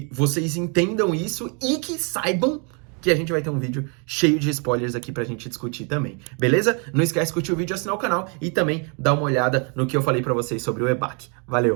vocês entendam isso e que saibam que a gente vai ter um vídeo cheio de spoilers aqui pra gente discutir também, beleza? Não esquece de curtir o vídeo, assinar o canal e também dar uma olhada no que eu falei pra vocês sobre o EBAC.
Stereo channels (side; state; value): left; quieter; 36.0 dB